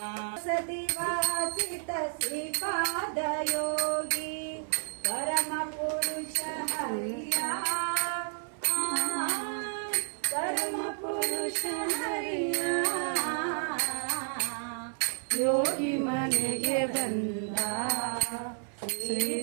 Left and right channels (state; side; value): silent; left; 57 dB below the other